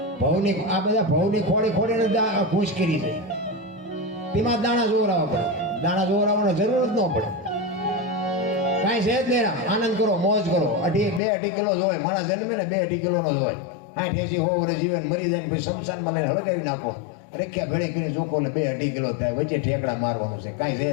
ભવની આ બધા ભવની ખોડીને ખુશ કરી છે. તેમાં દાણા જોવરાવા પડે. દાણા જોવરાવાનો જરૂર જ ન પડે. કાંઈ છે જ નહીં. આનંદ કરો, મોજ કરો. 2-2.5 કિલો જ હોય. માણસ જન્મે ને 2-2.5 કિલોનો જ હોય. 60-80 વર્ષ જીવન મરી જાય પછી શમશાનમાં લઈને હળગાવી નાખો. રેખ્યા ભેળી કરીને ચોખ્ખો એટલે 2-2.5 કિલો થાય. વચ્ચે ઠેકડા મારવાનું છે. કાંઈ છે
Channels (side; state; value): right; drops out; at 11.2 s